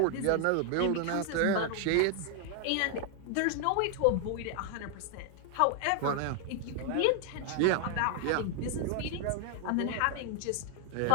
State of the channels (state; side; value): different; both; correlation 0.00